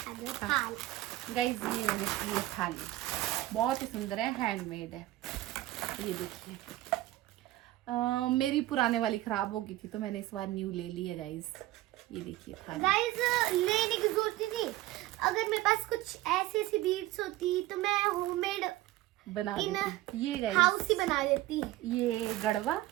दो थाल। गाइस, ये मैंने की है थाली, बहुत ही सुंदर है, हैंडमेड है। ये देखिए, मेरी पुराने वाली खराब हो गई थी तो मैंने इस बार न्यू ले ली है गाइस। ये देखिए थाली। गाइस लेने की जरूरत ही नहीं, अगर मेरे पास कुछ ऐसी ऐसी बीड्स होती तो मैं होममेड बना देती। ये गाइस हाउस ही बना देती। ये गड़वा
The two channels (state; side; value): quieter; left; 16.6 dB